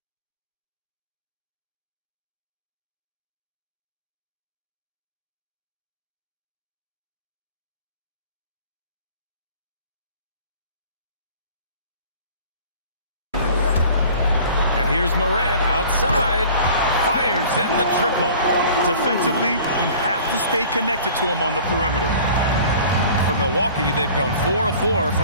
Here's Morant outside, fires in the triple. Defensively, you have to stay connected to him on the perimeter. For Milwaukee, they've gone 4 of 4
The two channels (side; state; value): both; inverted; correlation -0.46